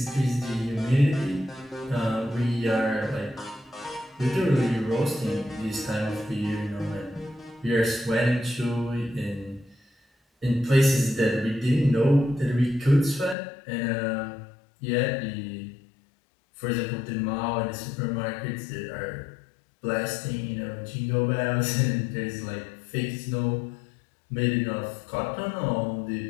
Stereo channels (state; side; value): drops out; right; at 13.4 s